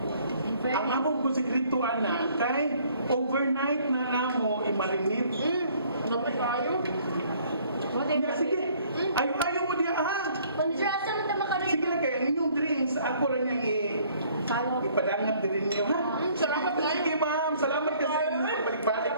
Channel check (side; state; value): both; inverted; correlation -0.60